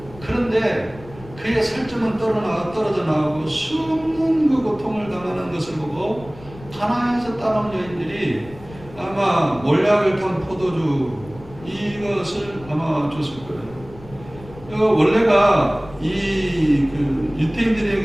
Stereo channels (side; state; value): left; noise; rumble, 19 dB below the sound